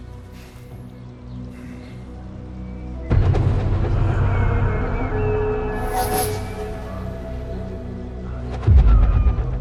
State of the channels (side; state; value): both; identical; correlation 1.00